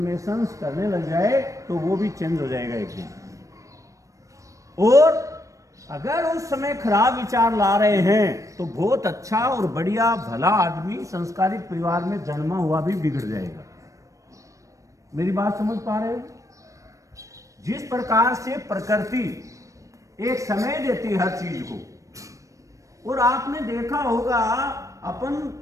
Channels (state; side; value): late; left; 0.16 ms